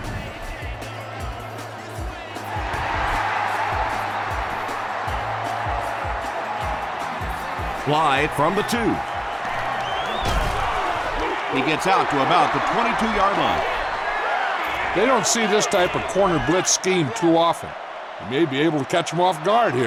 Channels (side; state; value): both; identical; correlation 1.00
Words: Slide from the 2. He gets out to about the 22-yard line. They don't see this type of corner blitz scheme too often. You may be able to catch them off guard